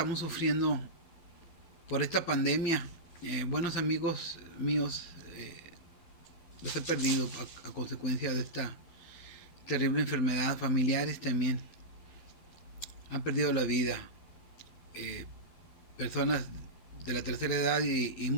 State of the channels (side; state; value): right; late; 12 ms